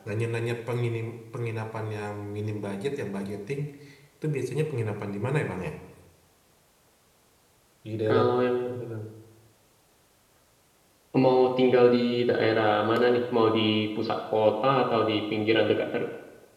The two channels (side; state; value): both; identical; correlation 1.00